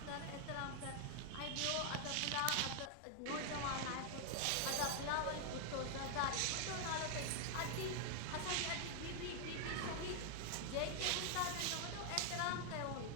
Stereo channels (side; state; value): both; different; correlation 0.00